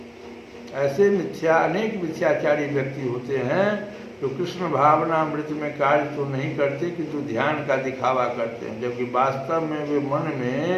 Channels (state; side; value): identical; both; correlation 1.00